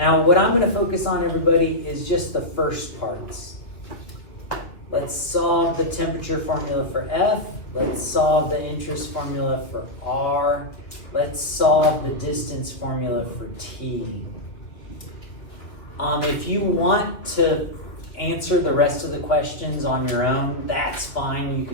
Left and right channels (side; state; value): right; late; 2.3 ms